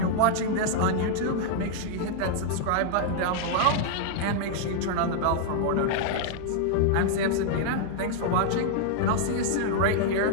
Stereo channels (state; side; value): different; both; correlation -0.01